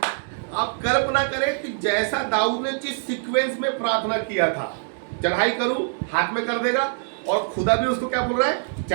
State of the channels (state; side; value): silent; left; 63 dB below the other